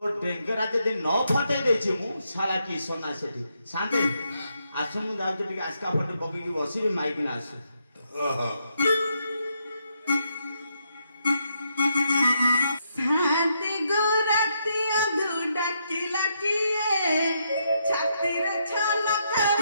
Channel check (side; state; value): both; inverted; correlation -0.78